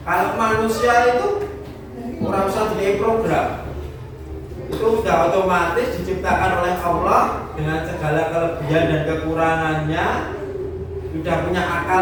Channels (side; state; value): both; identical; correlation 1.00